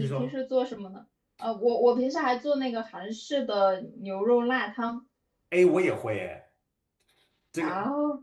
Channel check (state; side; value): identical; both; correlation 1.00